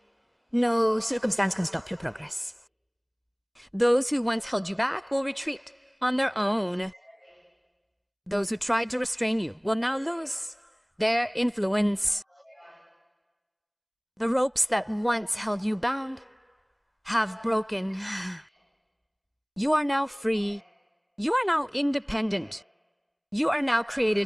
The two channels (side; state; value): both; identical; correlation 1.00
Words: no circumstance can stop your progress. Those who once held you back will retreat on their own. Those who tried to restrain you will now lose their influence. The ropes that once held you bound have broken. You are now free. You are now independent. You are now